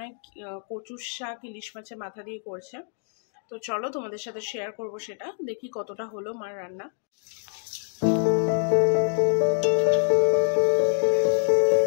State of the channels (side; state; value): right; silent; 61 dB below the other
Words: হয় কচুর শাক ইলিশ মাছের মাথা দিয়ে করছে। তো চলো তোমাদের সাথে শেয়ার করব সেটা, দেখি কতটা হলো মার রান্না।